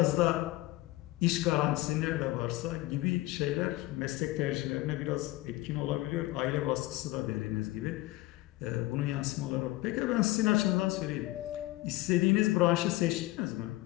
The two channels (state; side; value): quieter; right; 18.5 dB